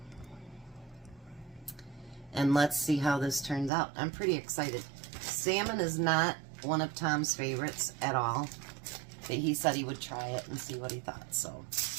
And let's see how this turns out. I'm pretty excited. Salmon is not one of Tom's favorites at all. But he said he would try it and see what he thought. So,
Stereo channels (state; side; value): drops out; left; at 3.7 s